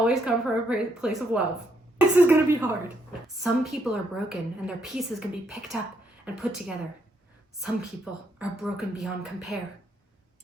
come from a place of love. This is gonna be hard. Some people are broken and their pieces can be picked up and put together. Some people are broken beyond compare.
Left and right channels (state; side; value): normal; both; correlation 0.75